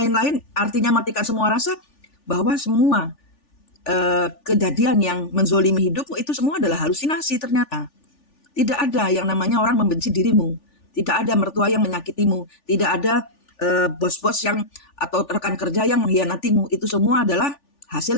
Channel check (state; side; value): late; right; 3.4 ms